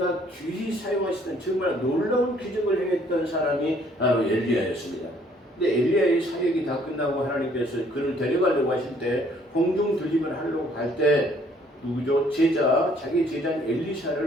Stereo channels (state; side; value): normal; both; correlation 0.62